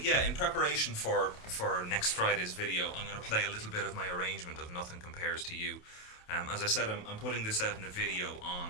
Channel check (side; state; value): right; late; 28 ms